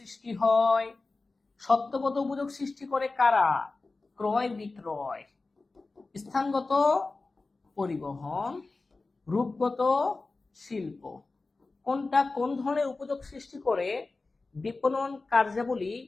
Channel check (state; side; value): quieter; right; 3.6 dB